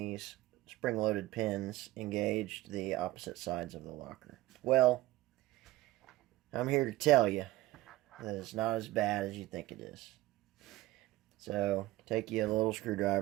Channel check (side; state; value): left; quieter; 17.3 dB